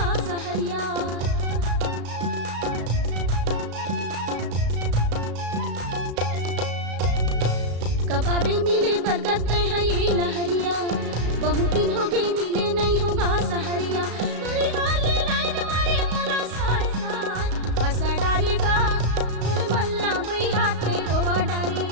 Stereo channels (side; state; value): left; late; 35 ms